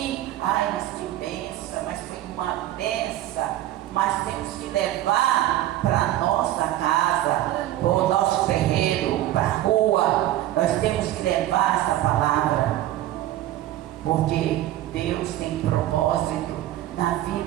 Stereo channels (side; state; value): left; quieter; 14.0 dB